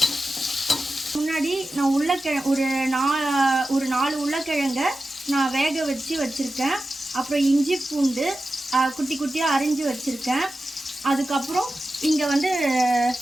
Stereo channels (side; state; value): both; normal; correlation 0.93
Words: முன்னாடி நான் ஒரு 4 உருளைக்கிழங்க நான் வேக வச்சுருக்கேன். அப்புறம் இஞ்சி பூண்டு குட்டி குட்டியாக அரிஞ்சு வச்சுருக்கேன். அதுக்கப்புறம் இங்கே